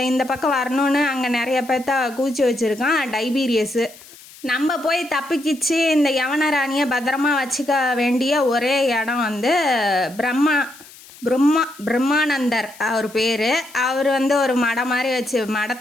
இந்த பக்கம் வரணும்னு அங்கே நிறைய பேர்த்த கூச்சி வச்சுருக்கான் டைபீரியஸு. நம்ம போய் தப்பிக்கிச்சு இந்த யவனராணியை பத்திரமா வச்சுக்க வேண்டிய ஒரே இடம் வந்து பிரம்மானந்தர் அவர் பேர். அவர் வந்து ஒரு மடம் மாதிரி வச்சு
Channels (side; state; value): left; noise; hiss, 21 dB below the sound